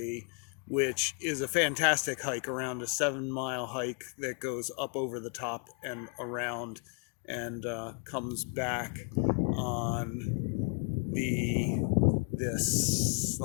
which is a fantastic hike, around a 7-mile hike that goes up over the top and around and comes back on this.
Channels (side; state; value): right; quieter; 39.0 dB